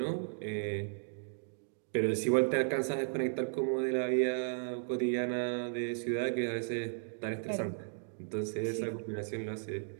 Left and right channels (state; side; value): silent; left; digital silence